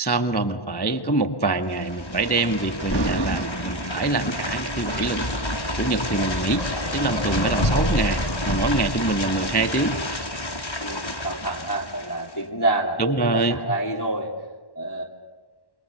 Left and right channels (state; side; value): late; right; 1.1 ms